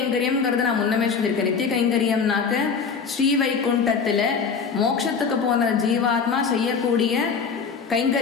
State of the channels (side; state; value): right; quieter; 5.7 dB